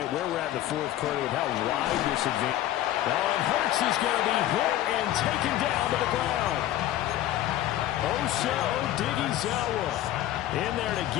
where we're at in the 4th quarter with how wide this advantage. Oh, and Hurts is going to be hit and taken down to the ground. Osa Odighizuwa in there to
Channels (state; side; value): quieter; right; 13.4 dB